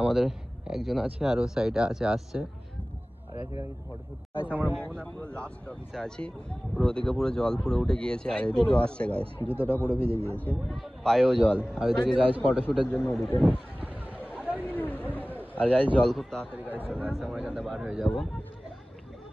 আমাদের একজন আছে আর ও সাইডে আসছে। আর এখানে কিছু ফটো ফুট গাইস। আমরা মোহনা পুরো লাস্ট অফিসে আছি, পুরো ওদিকে পুরো জল পুরো উঠে গিয়েছে। আর এদিকেও আসছে গাইস, জুতোটা পুরো ভিজে গিয়েছে, পায়েও জল। আর ওইদিকে গাইস ফটোশুটের জন্য ওদিকে। আর গাইস জল খুব তাড়াতাড়ি গাইস চলে আসছে, আমরা এখানে বার হয়ে যাবো।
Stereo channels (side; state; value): both; normal; correlation 0.98